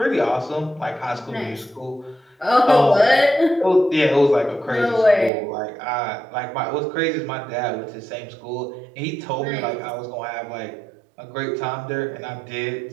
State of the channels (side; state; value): left; drops out; at 5.3 s